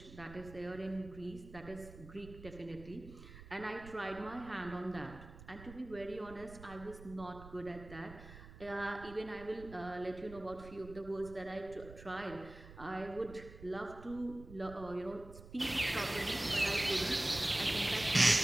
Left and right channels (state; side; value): noise; right; rumble, 16 dB below the sound